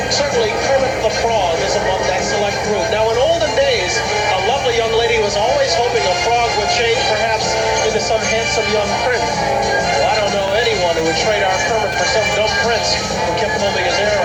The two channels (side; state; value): both; identical; correlation 1.00